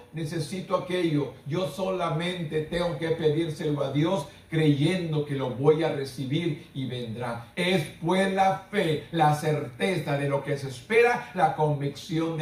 necesito aquello. Yo solamente tengo que pedírselo a Dios, creyendo que lo voy a recibir y vendrá. Es pues la fe, la certeza de lo que se espera, la convicción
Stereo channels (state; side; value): identical; both; correlation 1.00